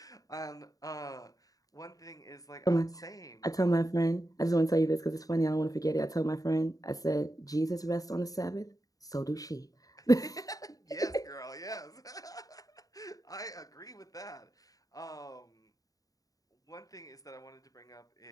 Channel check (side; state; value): right; late; 0.17 ms